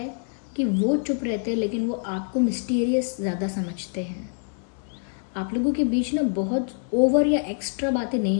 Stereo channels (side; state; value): right; silent; 61 dB below the other